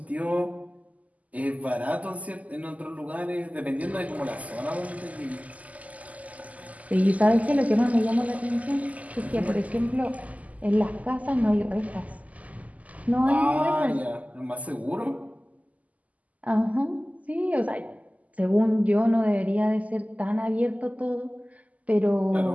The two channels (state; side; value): late; left; 0.074 ms